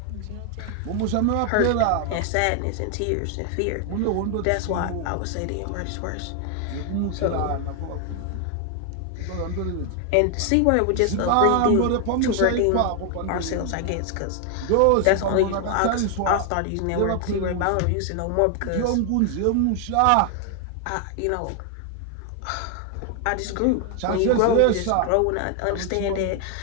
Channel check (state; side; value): different; both; correlation 0.00